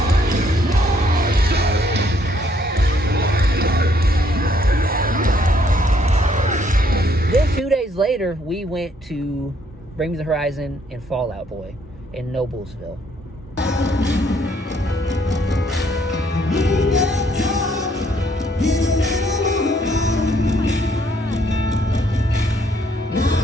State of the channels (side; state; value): both; normal; correlation 0.67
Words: Then 2 days later, we went to Bring Me the Horizon and Fall Out Boy in Noblesville.